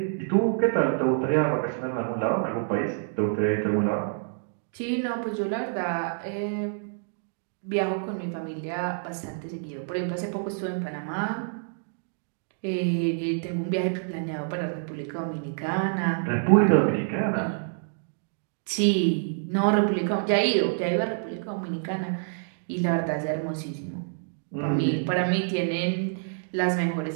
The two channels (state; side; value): silent; left; digital silence